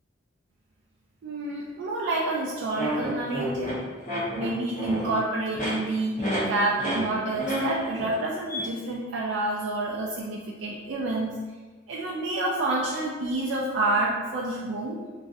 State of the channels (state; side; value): normal; both; correlation 0.20